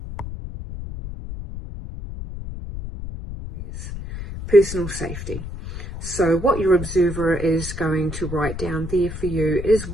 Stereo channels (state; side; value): noise; left; rumble, 8 dB below the sound